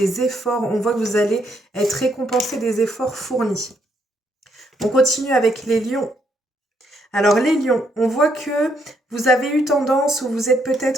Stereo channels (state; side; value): normal; both; correlation 0.73